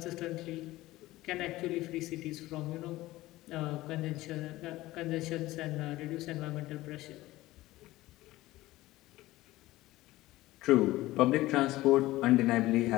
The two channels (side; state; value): right; quieter; 17.5 dB